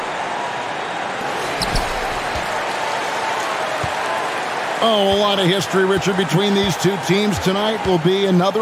Oh, a lot of history, Richard, between these two teams. Tonight will be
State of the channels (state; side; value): identical; both; correlation 1.00